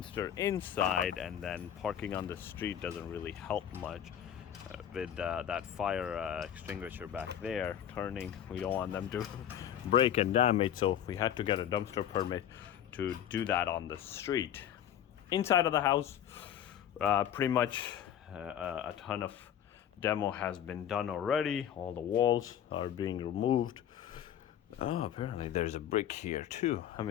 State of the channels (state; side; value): quieter; right; 10.0 dB